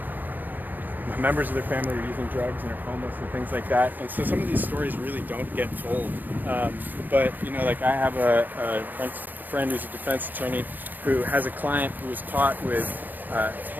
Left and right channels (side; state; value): left; late; 0.086 ms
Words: members of their family are using drugs and are homeless and things like that. And so some of these stories really don't get told. But, like I have a friend who's a defense attorney who has a client who was caught with